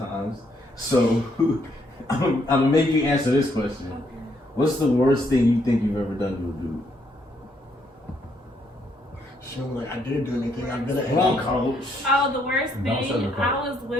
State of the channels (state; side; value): normal; both; correlation 0.72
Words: So I'm gonna make you answer this question. What's the worst thing you think you've ever done to a dude? She was like, I didn't do anything. I'm gonna Wrong, coach. Oh, the worst Don't thing, sugarcoat. I was